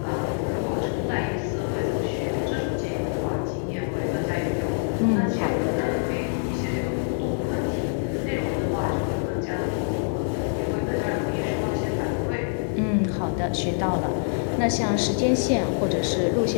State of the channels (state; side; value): silent; right; digital silence